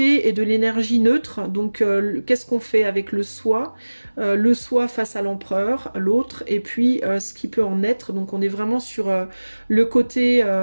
et de l'énergie neutre. Donc qu'est-ce qu'on fait avec le soi face à l'empereur, l'autre, et puis ce qui peut en être. Donc on est vraiment sur le côté...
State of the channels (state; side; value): inverted; both; correlation -1.00